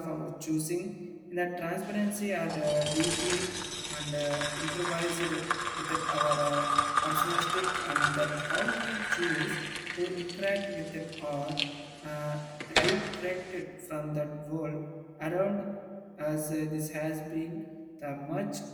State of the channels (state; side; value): identical; both; correlation 1.00